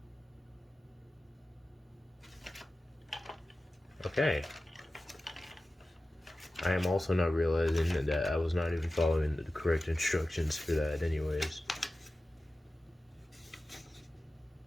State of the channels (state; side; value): normal; both; correlation 0.95